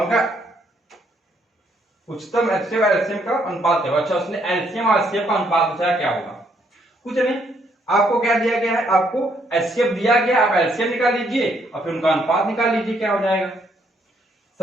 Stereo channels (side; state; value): both; normal; correlation 0.71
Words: उनका उच्चतम एचसीएफ और एलसीएम का अनुपात है। अच्छा उसने एलसीएम और एचसीएफ का अनुपात पूछा क्या होगा? कुछ नहीं, आपको क्या दिया गया है, आपको एचसीएफ दिया गया, आप एलसीएम निकाल लीजिए और फिर उनका अनुपात निकाल लीजिए क्या हो जाएगा।